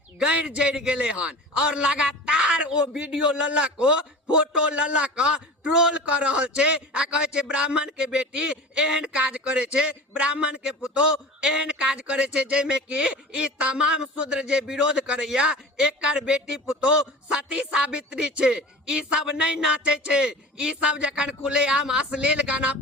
गैर जड़ गेले हन और लगातार वो वीडियो ललक को फोटो ललक ट्रोल कर रहल छे आ कहे छे ब्राह्मण के बेटी एहन काज करे छे, ब्राह्मण के पुतोह एहन काज करे छे जेमे कि ई तमाम शूद्र जे विरोध करैया एकर बेटी पुतोह सती सावित्री छे। ई सब नहीं नाचे छे, ई सब जखन खुलेआम अश्लील गाना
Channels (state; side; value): normal; both; correlation 0.36